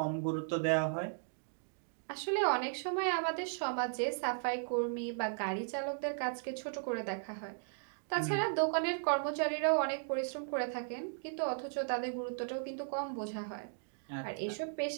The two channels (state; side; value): silent; left; digital silence